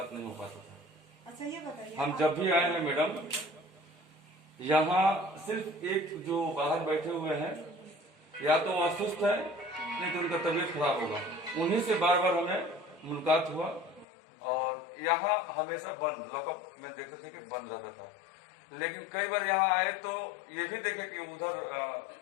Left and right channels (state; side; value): drops out; right; at 14.1 s